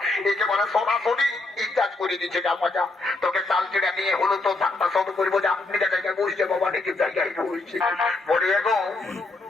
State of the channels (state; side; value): quieter; right; 3.2 dB